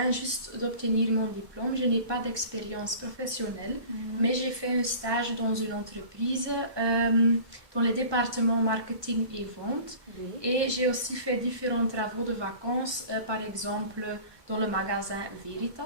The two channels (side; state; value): left; late; 1.2 ms